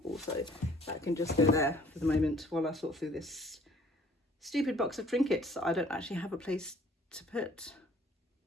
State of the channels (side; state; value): both; normal; correlation 0.56